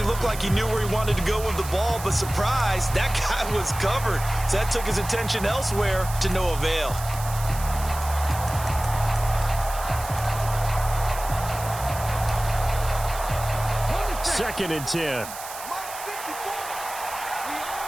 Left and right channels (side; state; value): right; noise; hiss, 11 dB below the sound